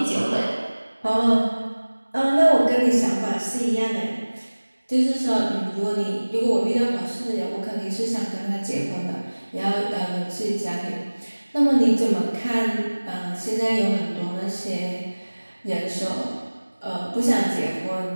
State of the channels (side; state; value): both; inverted; correlation -1.00